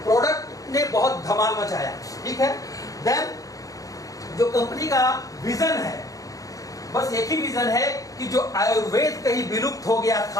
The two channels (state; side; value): late; right; 0.17 ms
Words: प्रोडक्ट ने बहुत धमाल मचाया। ठीक है, देन जो कंपनी का विजन है, बस एक ही विजन है कि जो आयुर्वेद कहीं विलुप्त हो गया